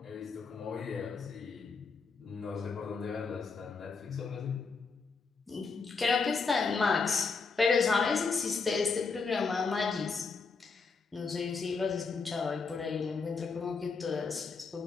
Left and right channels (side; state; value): right; quieter; 4.8 dB